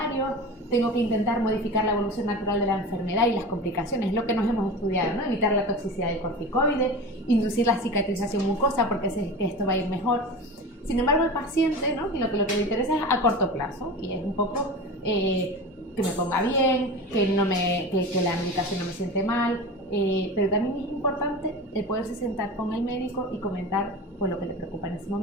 tengo que intentar modificar la evolución natural de la enfermedad y las complicaciones, lo que nos hemos estudiado, ¿no? Evitar la toxicidad del corticoide, inducir la cicatrización mucosa porque sé que esto va a ir mejor. Sin embargo, el paciente, ¿no? Lo que le interesa es a corto plazo, y es un poco que que me ponga bien, que la medicación no me siente mal, pero también es importante el poderse sentar con el médico y comentar pues, lo que le preocupa en ese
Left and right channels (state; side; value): normal; both; correlation 0.31